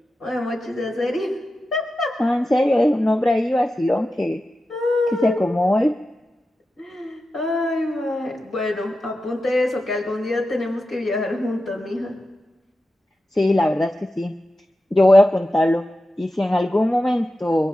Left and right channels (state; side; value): normal; both; correlation 0.92